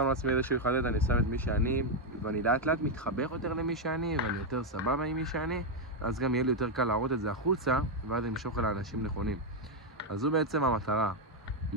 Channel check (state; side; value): normal; both; correlation 0.03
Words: לעצמי איזשהו חדד, אני שם את מי שאני, ואני לאט לאט מתחבר יותר למי שאני, ואני יותר סבבה עם מי שאני, אז גם יהיה לי יותר קל להראות את זה החוצה, ואז אני אמשוך אל האנשים נכונים. אז זו בעצם המטרה,